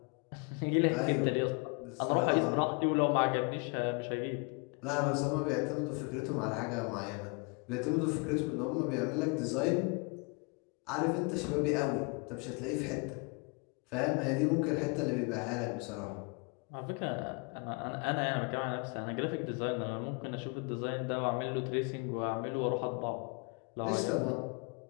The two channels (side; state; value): right; quieter; 32.4 dB